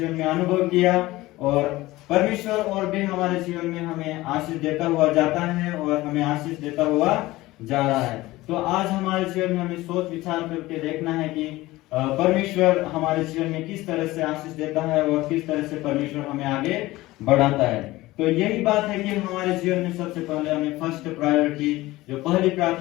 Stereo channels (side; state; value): right; quieter; 18.5 dB